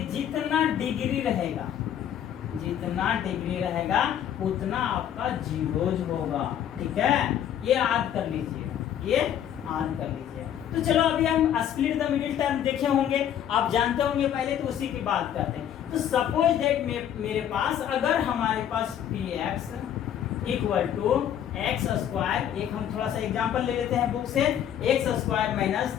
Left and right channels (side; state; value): right; quieter; 10.0 dB